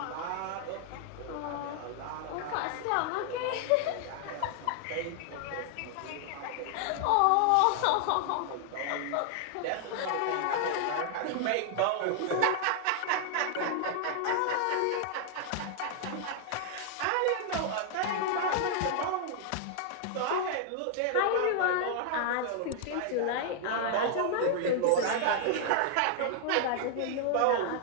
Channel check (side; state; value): both; different; correlation 0.00